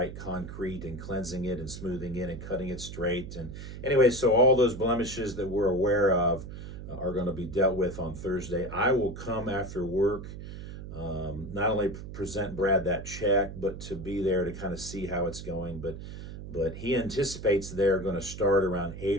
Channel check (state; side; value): noise; right; hum, 10 dB below the sound